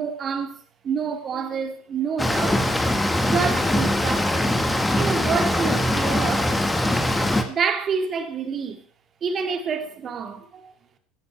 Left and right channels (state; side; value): normal; both; correlation 0.83